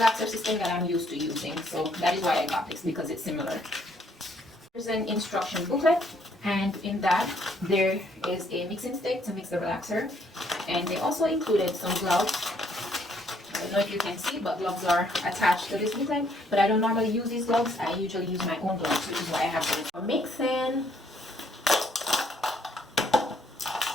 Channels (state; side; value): normal; both; correlation 0.68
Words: system that I'm used to using, so that is why I got this, because it's similar. There's an instruction booklet, and in that there is a mixing stick to mix the relaxer, and they also included some gloves. I don't know if you can see, but gloves are attached to this booklet, but I don't normally use these gloves. I usually use my own gloves, which is why I have them. For mixing,